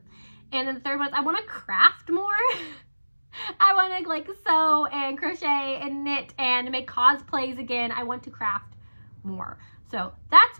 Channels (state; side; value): inverted; both; correlation -1.00